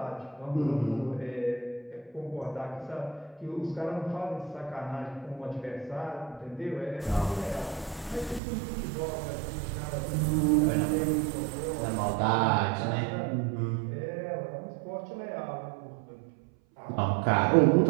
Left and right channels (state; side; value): drops out; left; at 8.4 s